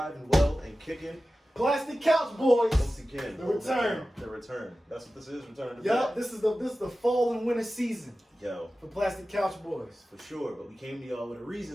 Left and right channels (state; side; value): normal; both; correlation 0.95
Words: and well and kicking. Plastic Couch Boys. Once again. The return. The return. That's what this is. Return to Yup, bed. this is the fall and winter season Yo, for Plastic Couch Boys. for sure. But we came to y'all with a